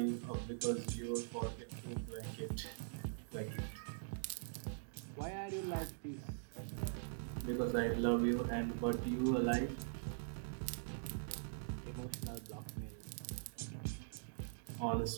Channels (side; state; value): left; silent; digital silence